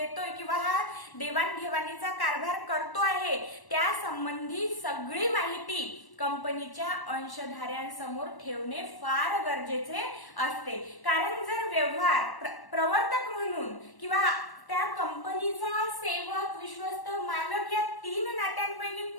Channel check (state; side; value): late; right; 1.1 ms